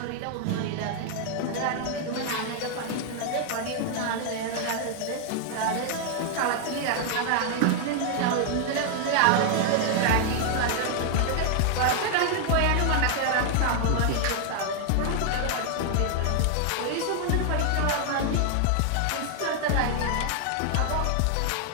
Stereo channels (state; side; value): different; both; correlation 0.00